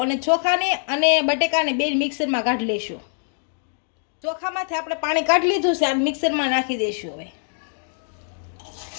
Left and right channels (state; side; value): silent; right; digital silence